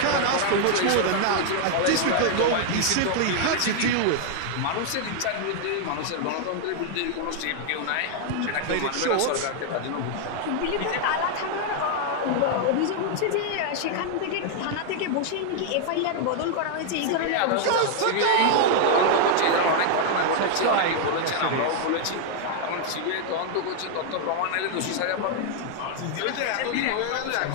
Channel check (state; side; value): different; both; correlation 0.00